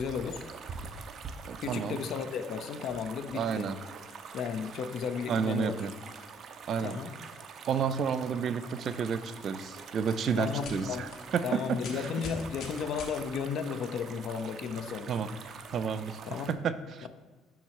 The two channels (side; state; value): both; normal; correlation 0.61